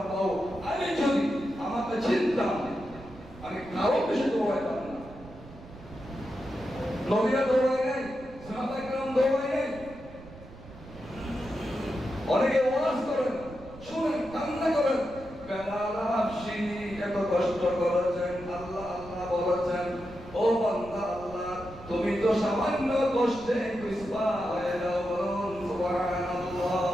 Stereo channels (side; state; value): right; noise; rumble, 18 dB below the sound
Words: আমি যদি আমাকে চিনতাম আমি কারো বেশি দৌড়াইতাম না। নবীরা দৌড়ায় নাই, সাহাবায়ে কেরাম দৌড়ায় নাই। অনেকে ওয়াজ করেন, শুনেন, কান্না করেন, বেলাল হাবশী এত কষ্ট করেছেন, আল্লাহ আল্লাহ বলেছেন, ও বান্দা আল্লাহ তুমি তো সামান্য কষ্টে কুসবা হয়ে যাও। বলুন সুবহানাল্লাহ।